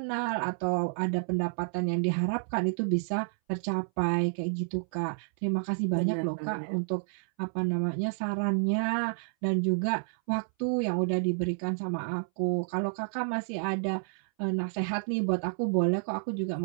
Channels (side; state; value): left; silent; 58 dB below the other